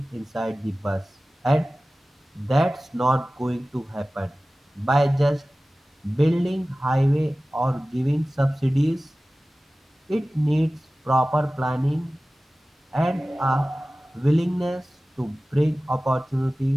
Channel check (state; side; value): normal; both; correlation 0.97